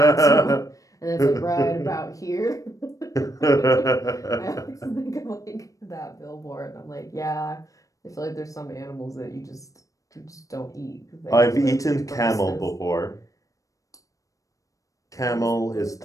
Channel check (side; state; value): right; late; 0.16 ms